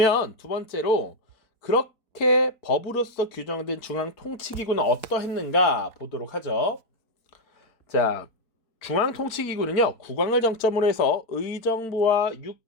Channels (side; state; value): right; late; 4.2 ms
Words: 두 번째로 그렇게 법으로서 규정된 중앙통치기구는 어떠했는가 보도록 하죠. 자, 중앙통치기구는요 국왕을 정점으로 해서 의정부와